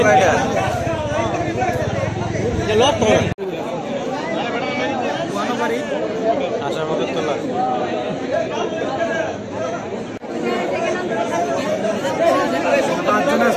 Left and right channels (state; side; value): identical; both; correlation 1.00